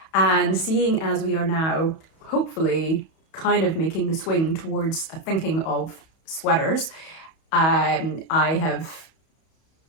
And seeing as we are now hopefully kind of making the swing towards thinking of sweaters, I have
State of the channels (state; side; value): late; right; 31 ms